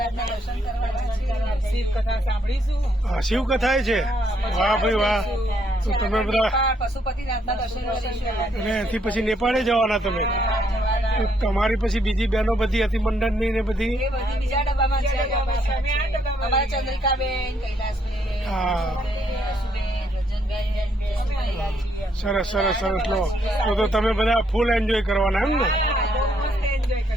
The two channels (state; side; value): normal; both; correlation 0.72